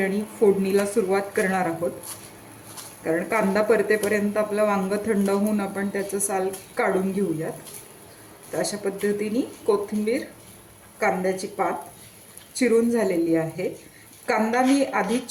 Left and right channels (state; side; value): identical; both; correlation 1.00